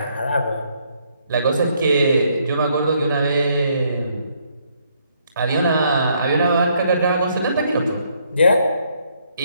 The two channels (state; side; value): inverted; both; correlation -0.71